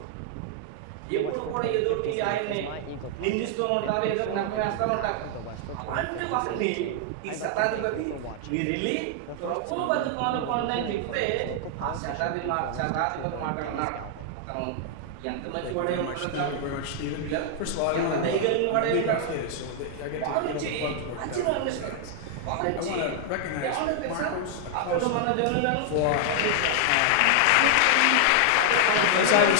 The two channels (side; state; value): both; different; correlation -0.01